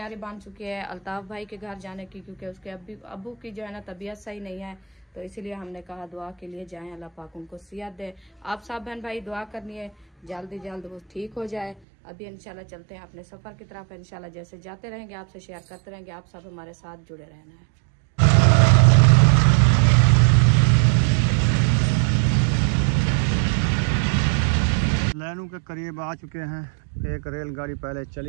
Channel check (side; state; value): left; drops out; at 11.8 s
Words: बन चुकी है अल्ताफ भाई के घर जाने की, क्योंकि उसके अब्बू की जो है ना तबीयत सही नहीं है, तो इसीलिए हमने कहा दुआ के लिए जाएं, अल्लाह पाक उनको सेहत दे। आप सब बहन भाई दुआ करनी है जल्दी जल्द वो ठीक हो जाए। अभी इंशाल्लाह चलते हैं अपने सफर की तरफ। इंशाल्लाह जैसे जाते रहेंगे आपसे शेयर करते रहेंगे, आप सब हमारे साथ जुड़े रहना है। लैनू के करीब आ चुके हैं। एक रेलगाड़ी पहले